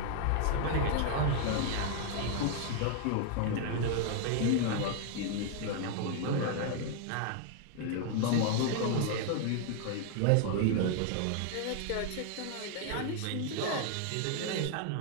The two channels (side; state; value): both; different; correlation 0.00